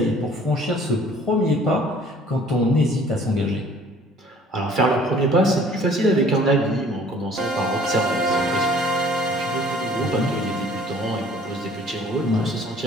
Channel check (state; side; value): normal; both; correlation 0.53